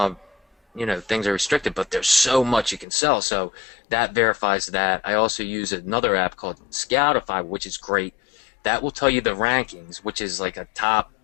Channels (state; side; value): drops out; right; at 2.9 s